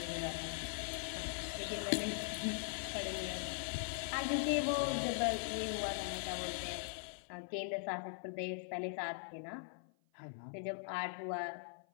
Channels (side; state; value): right; silent; 50 dB below the other